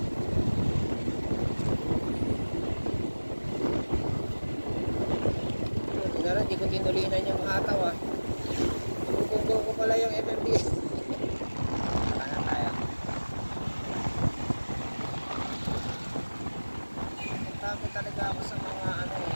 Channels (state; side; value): inverted; both; correlation -1.00